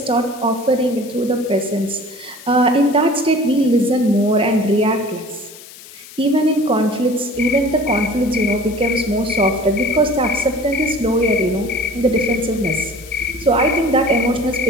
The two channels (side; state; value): left; noise; hiss, 18 dB below the sound